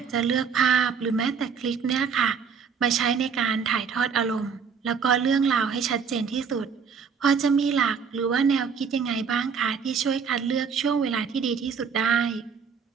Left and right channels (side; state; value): left; quieter; 6.2 dB